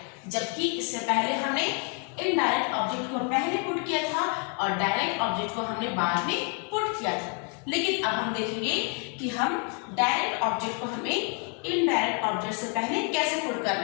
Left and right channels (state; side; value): quieter; right; 38.9 dB